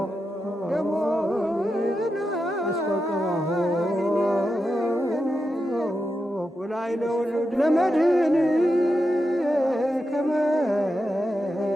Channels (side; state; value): both; normal; correlation 0.88